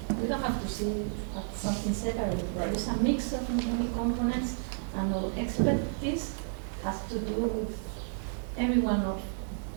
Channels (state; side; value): silent; left; digital silence